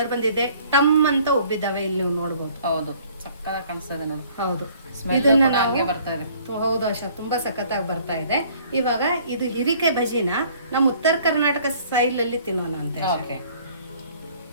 ಬಂದಿದೆ, ಟಮ್ ಅಂತ ಉಬ್ಬಿದಾವೆ. ಇಲ್ಲಿ ನೀವು ನೋಡ್ಬೋದು. ಹೌದು, ಸಕ್ಕತ್ತಾಗಿ ಕಾಣಿಸ್ತದೆ ನೋಡಿ. ಹೌದು, ಇದನ್ನ ಹಂಗೆ ಬರ್ತಾ ಇದೆ. ಹೌದು ಆಶಾ, ತುಂಬಾ ಸಖತ್ತಾಗಿ ಬರ್ತಾ ಇದೆ. ಇವಾಗ ಇದು ಹಿರಿಕಾಯಿ ಬಜಿನ ನಮ್ಮ ಉತ್ತರ ಕರ್ನಾಟಕ ಸ್ಟೈಲ್ ಅಲ್ಲಿ ತಿನ್ನೋಣ ಅಂತ. ಓಕೆ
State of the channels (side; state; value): both; inverted; correlation -0.57